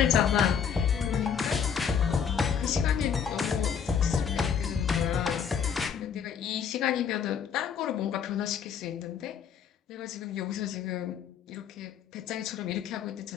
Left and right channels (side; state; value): right; quieter; 7.5 dB